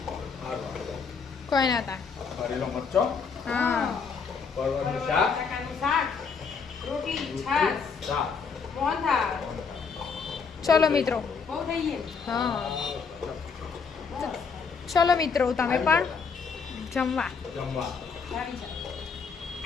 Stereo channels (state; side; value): quieter; right; 5.5 dB